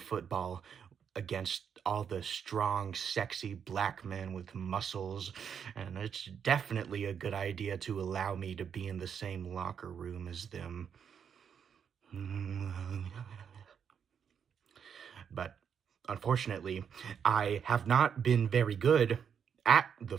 against all the strong, sexy black men with muscles, and it's definitely a good idea to allow me to be in the same locker room as them. But unfortunately, I have not been very good at the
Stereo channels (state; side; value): quieter; left; 7.5 dB